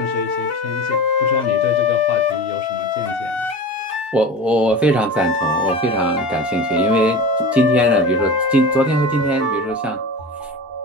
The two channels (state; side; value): normal; both; correlation 0.31